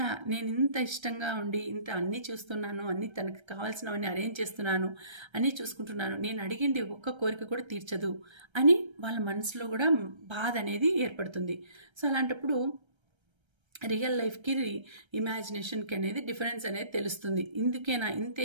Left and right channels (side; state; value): left; late; 1.3 ms